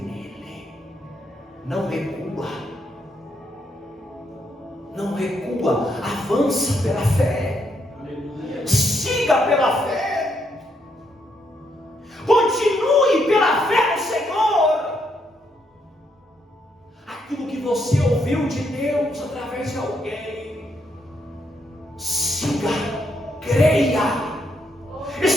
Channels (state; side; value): normal; both; correlation 0.76